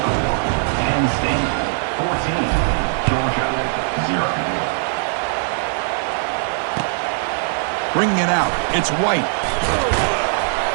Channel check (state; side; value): silent; left; 66 dB below the other